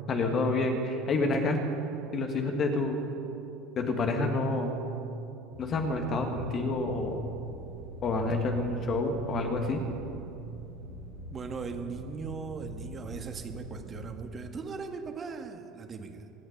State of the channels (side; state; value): both; normal; correlation 0.47